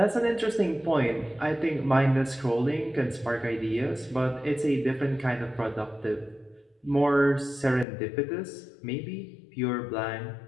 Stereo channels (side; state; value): right; drops out; at 7.9 s